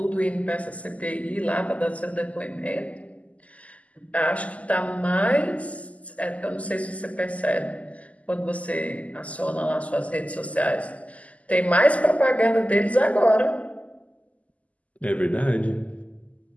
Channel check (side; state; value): right; late; 0.070 ms